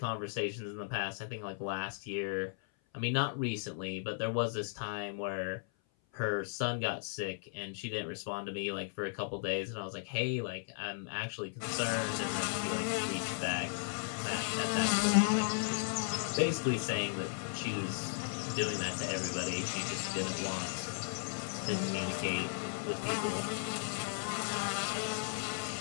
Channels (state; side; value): silent; right; 54 dB below the other